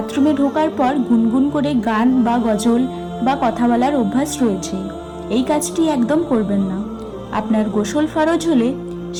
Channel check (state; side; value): identical; both; correlation 1.00